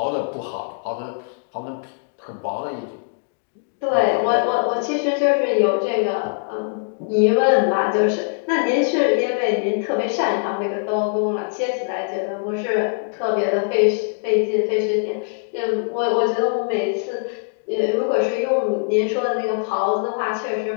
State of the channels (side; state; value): right; silent; digital silence